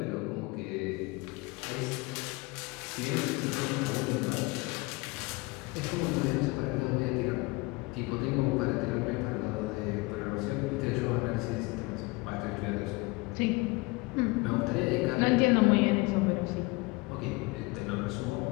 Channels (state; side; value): quieter; right; 25.1 dB